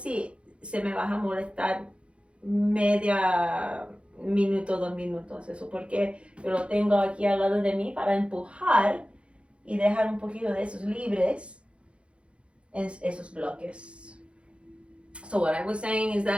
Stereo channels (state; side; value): late; left; 0.059 ms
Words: se me va a molestar media minuto, 2 minutos. Eso porque yo lo tengo aquí al lado de mí para empujar y dejar un poquito de esos libres en esos bloques. So what I was saying is